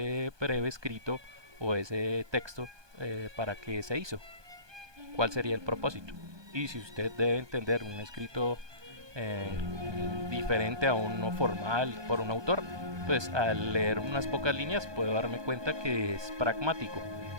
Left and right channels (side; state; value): left; late; 1.2 ms